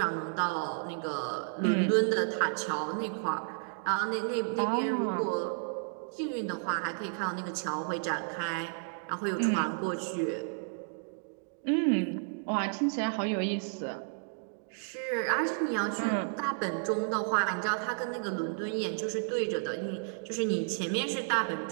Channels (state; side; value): silent; left; digital silence